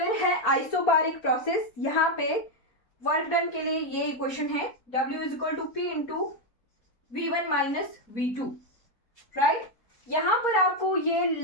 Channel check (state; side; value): late; right; 4.3 ms